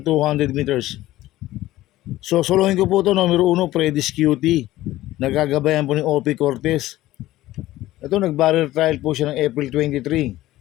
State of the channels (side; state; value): right; quieter; 15.9 dB